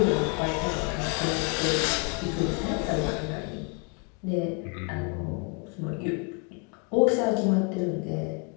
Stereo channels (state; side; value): quieter; right; 33.3 dB